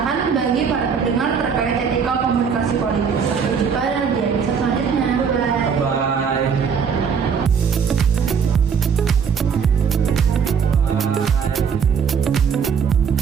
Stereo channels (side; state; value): left; quieter; 6.5 dB